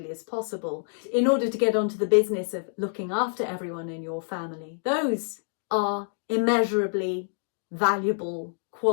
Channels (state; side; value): silent; right; digital silence